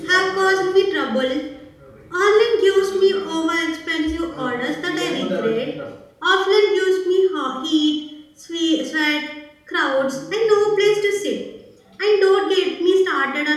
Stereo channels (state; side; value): identical; both; correlation 1.00